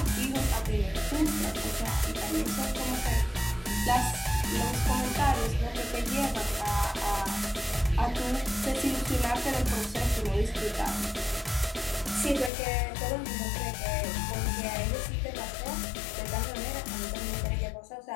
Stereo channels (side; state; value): right; drops out; at 12.5 s